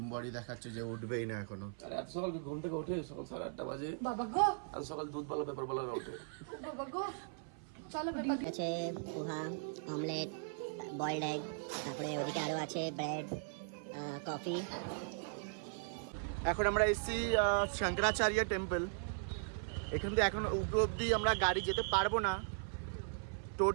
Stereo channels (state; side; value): silent; left; 52 dB below the other